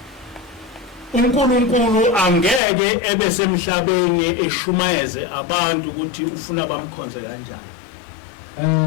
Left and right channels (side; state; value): right; drops out; at 2.6 s